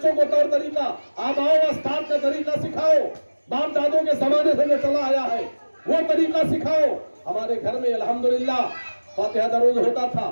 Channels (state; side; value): inverted; both; correlation -1.00